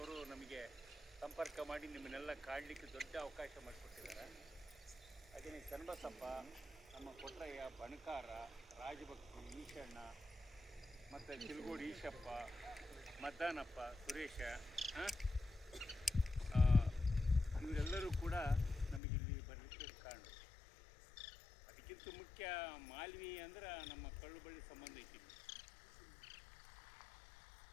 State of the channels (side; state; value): right; drops out; at 19.0 s